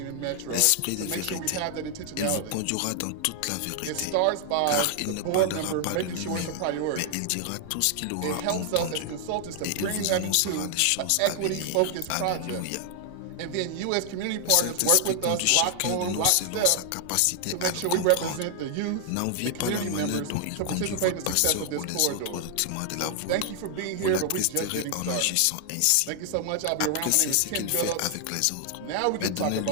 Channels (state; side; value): different; both; correlation 0.00